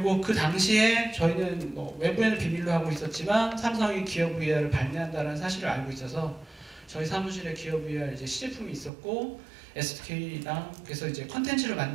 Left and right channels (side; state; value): left; drops out; at 8.9 s